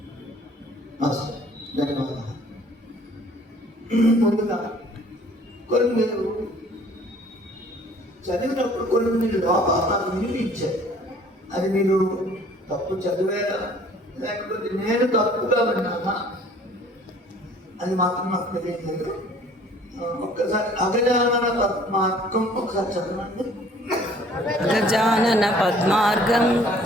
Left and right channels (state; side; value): normal; both; correlation 0.54